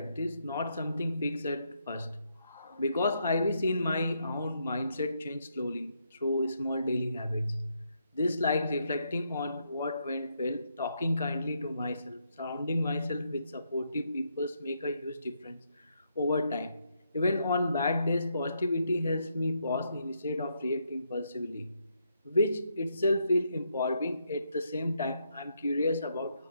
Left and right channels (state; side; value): inverted; both; correlation -0.77